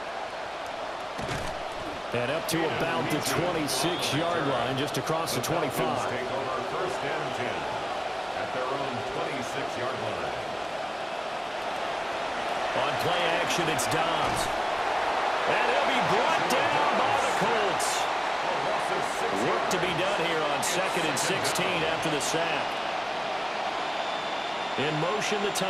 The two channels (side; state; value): both; identical; correlation 1.00